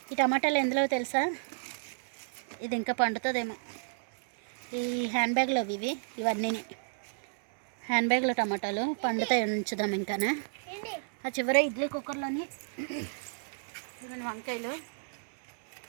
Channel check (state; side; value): silent; left; 57 dB below the other